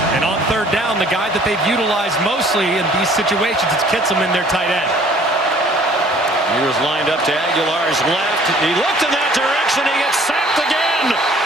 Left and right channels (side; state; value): both; normal; correlation 0.55